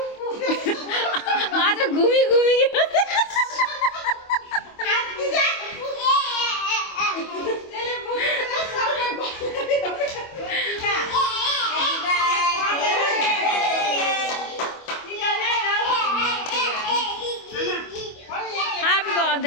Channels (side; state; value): right; late; 25 ms